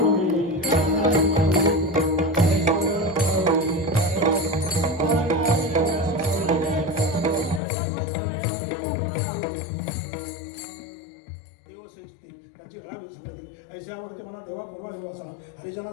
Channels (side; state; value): right; drops out; at 7.6 s